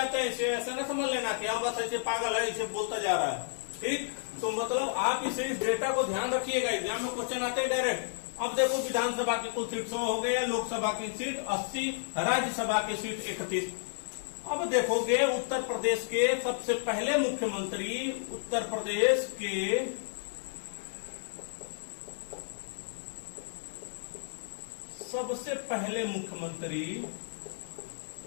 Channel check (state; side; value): silent; right; 57 dB below the other